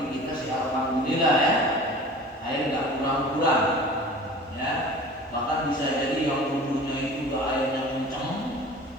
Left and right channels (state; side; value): normal; both; correlation 0.41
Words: kita sih alhamdulillah ya, air nggak kurang-kurang, ya. Bahkan bisa jadi yang wudunya itu nggak airnya kencang,